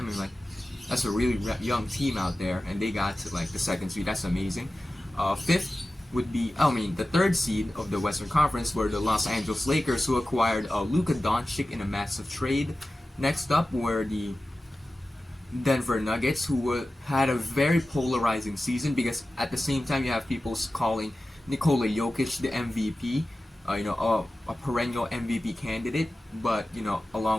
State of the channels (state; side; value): normal; both; correlation 0.95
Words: And that's a really young team out there, and they got to the second seed. That's amazing. Fifth would be, the third seed of the Western Conference were the Los Angeles Lakers, who acquired Luka Doncic in a massive trade. Next up were the Denver Nuggets, who had a very polarizing season because at the same time you have people calling Nikola Jokic the MVP, a perennial MVP candidate. But